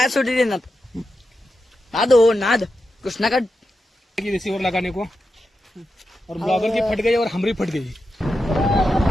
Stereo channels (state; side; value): normal; both; correlation 0.89